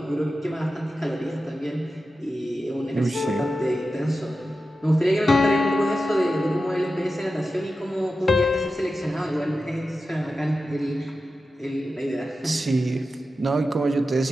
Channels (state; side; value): normal; both; correlation 0.92